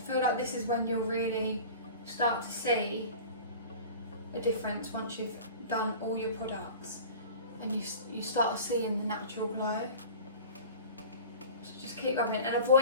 feel like this is when you'll really start to see a difference once you've done all your products, and you start seeing the natural glow. So just keep rubbing, and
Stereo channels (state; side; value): inverted; both; correlation -0.39